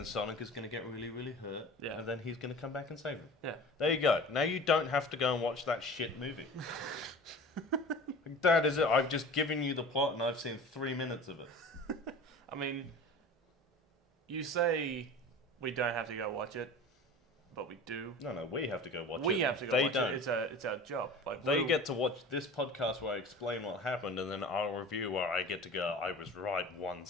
Sonic is gonna get really, really hurt. Yeah. And then he's gonna come back and save him. Yeah. There you go. Now you don't have to go and watch that shit movie. That is it. I've just given you the plot and I've seen 3 minutes of it. I mean, you say we don't have to go watch it, but we do. No, we have to go watch it. We have to go watch it. It's our job. Like they get to watch this podcast where I explain what happened, and then our review where I get to go, I was right, 1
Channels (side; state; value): both; normal; correlation 0.38